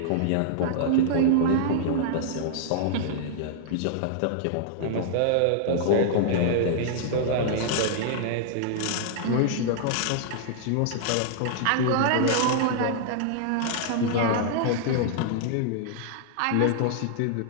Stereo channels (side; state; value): both; different; correlation -0.01